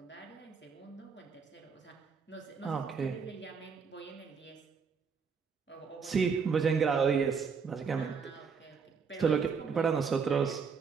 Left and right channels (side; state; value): left; quieter; 5.8 dB